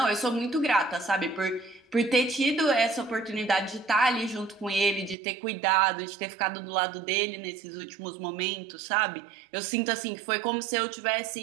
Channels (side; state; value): left; drops out; at 5.2 s